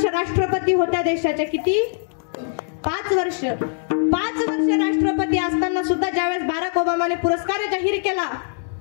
राष्ट्रपती होत्या देशाच्या. किती? 5 वर्ष. 5 वर्ष राष्ट्रपती असताना सुद्धा ज्यावेळेस बराक ओबामाने पुरस्कार जाहीर केला,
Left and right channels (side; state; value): right; silent; 56 dB below the other